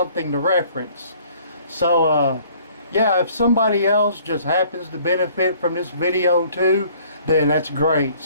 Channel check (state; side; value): inverted; both; correlation -0.57